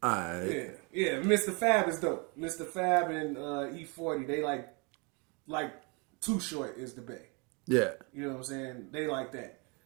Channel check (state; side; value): quieter; left; 31.2 dB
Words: All right. Yeah. Mr. Fab is dope. Mr. Fab and E40, they like Too Short is the Bay. Yeah. You know what I'm saying? They like that.